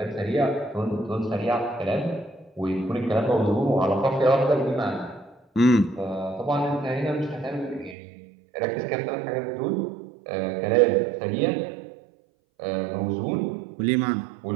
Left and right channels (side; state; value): left; drops out; at 8.0 s